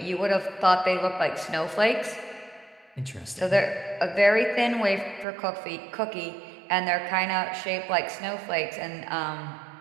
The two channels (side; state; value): left; drops out; at 5.2 s